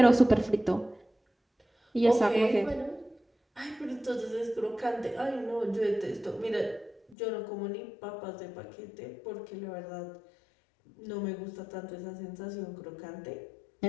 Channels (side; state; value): right; drops out; at 7.2 s